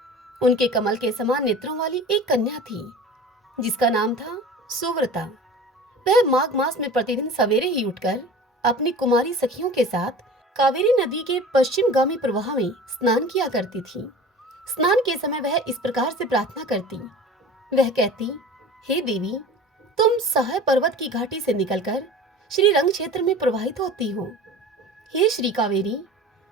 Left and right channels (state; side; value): normal; both; correlation 0.38